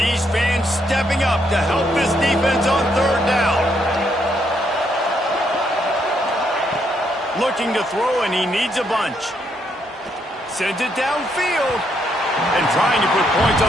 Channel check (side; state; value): both; normal; correlation 0.75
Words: fans stepping up to help this defense on 3rd down. Looking to throw, and he needs a bunch. Sends it downfield. And trying to put points